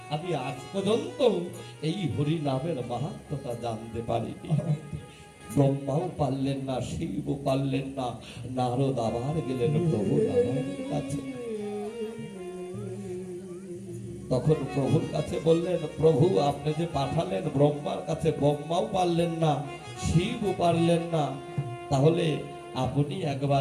আমি আজ পর্যন্ত এই হরি নামের মাহাত্ম্যটা জানতে পারিনি। ব্রহ্মাও পারলেন না, শিবও পারলেন না। নারদ আবার গেলেন প্রভু নারায়ণের কাছে। তখন প্রভুর কাছে বললেন, প্রভু আপনি যে পাঠালেন ব্রহ্মার কাছে, ব্রহ্মাও পারলেন না, শিবও পারলেন না, তাহলে আপনি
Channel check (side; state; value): both; identical; correlation 1.00